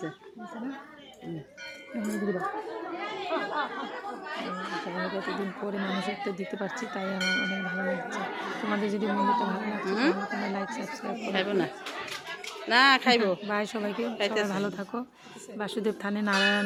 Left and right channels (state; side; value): identical; both; correlation 1.00